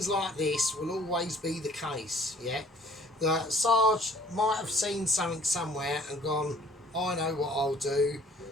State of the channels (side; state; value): both; normal; correlation 0.54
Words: like this will always be the case. Yeah, the Sarge might have seen something somewhere and gone, I know what I'll do